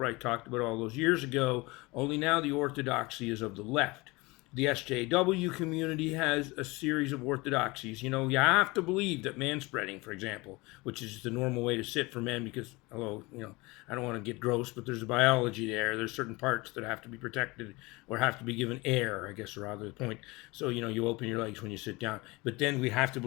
talked about all those years ago, only now the orthodoxy is of the left. The SJW community has a series of orthodoxies. You have to believe that manspreading, for example, which is the normal way to sit for men because, I don't want to get gross, but there's a biology there. There's certain parts that have to be protected or have to be given air, I guess, rather the point. So, you open your legs when you sit down. But then we have to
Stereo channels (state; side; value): quieter; right; 23.8 dB